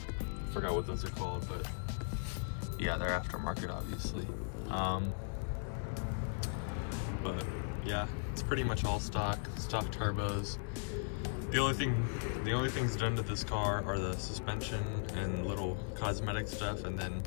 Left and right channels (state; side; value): silent; right; 53 dB below the other